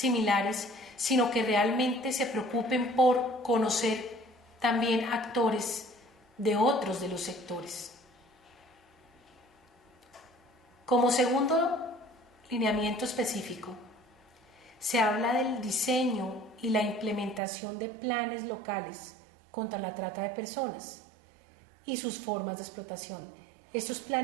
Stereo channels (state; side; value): drops out; left; at 17.4 s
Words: sino que realmente se preocupen por conocer también actores de otros de los sectores. Como segundo lineamiento específico, se habla del diseño y la implementación de planes locales contra la trata de personas y sus formas de explotación. Estos